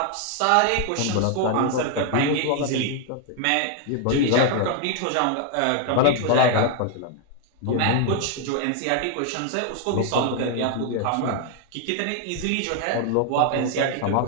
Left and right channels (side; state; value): both; different; correlation 0.00